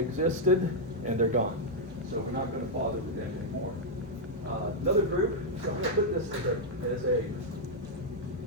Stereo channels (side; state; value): both; normal; correlation -0.03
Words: and they're gone. So we're not going to bother with them anymore. Another group, so I'm going to put this as a